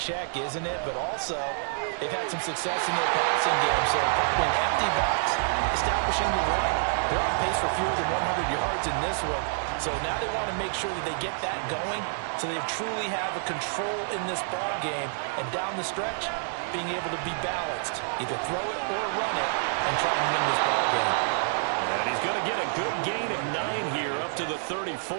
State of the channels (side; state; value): left; silent; digital silence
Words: isn't it? But also, they've had some success in their passing game. So probably an empty box, establishing the run. They're on pace for fewer than 100 yards in this one. So now they want to make sure that they get that going so they truly have a control in this ball game. And down the stretch, being able to be balanced. Either throw it or run it and try and win this ball game. And he's going to get a good gain of 9 here up to the 34.